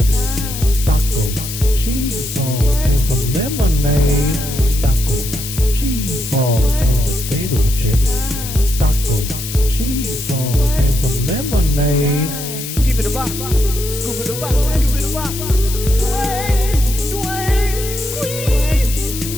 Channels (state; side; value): noise; left; hiss, 8 dB below the sound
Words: Tacos, cheese balls, and some lemonade. Tacos, cheese balls, and potato chips. Tacos, cheese balls, and some lemonade. Skip it a bop, scoop it a bop, skip it a bop. Dwayne, Dwayne, squeeze,